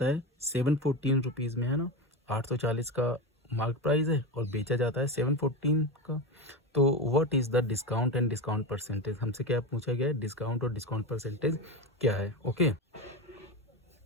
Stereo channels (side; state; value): both; normal; correlation 0.19